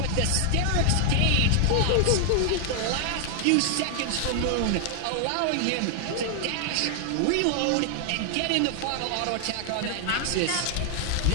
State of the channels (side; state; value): both; different; correlation 0.00